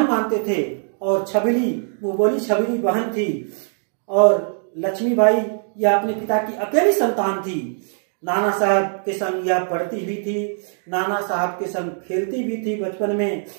मानते थे और छबीली, मुंह बोली छबीली बहन थी और लक्ष्मीबाई यह अपने पिता की अकेली संतान थी। नाना साहब के संग यह पढ़ती भी थी, नाना साहब के संग खेलती भी थी बचपन में।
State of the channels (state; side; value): silent; left; digital silence